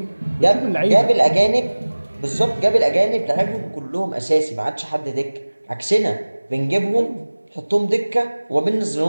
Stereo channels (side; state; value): both; inverted; correlation -1.00